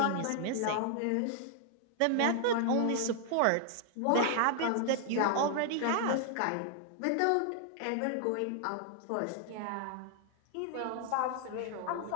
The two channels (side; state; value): both; different; correlation 0.00